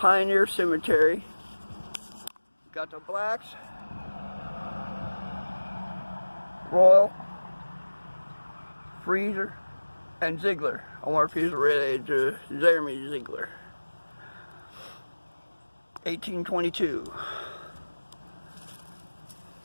Cemetery. Got the Blacks, Royal, Freezer, and Ziegler. I wonder if he's related to Jeremy Ziegler. 1822.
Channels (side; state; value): both; inverted; correlation -1.00